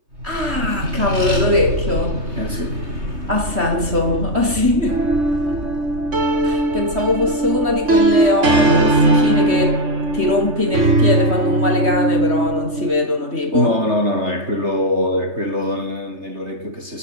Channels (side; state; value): left; late; 3.1 ms